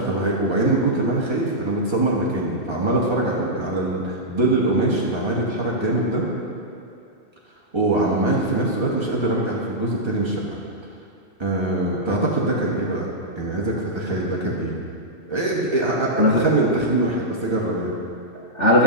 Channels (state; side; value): late; right; 2.6 ms